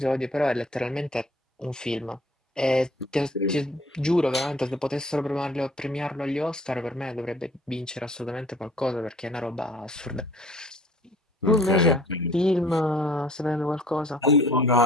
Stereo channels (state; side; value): normal; both; correlation 0.53